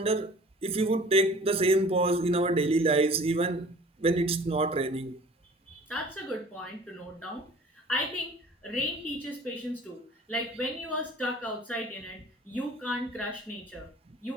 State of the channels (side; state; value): both; normal; correlation 0.47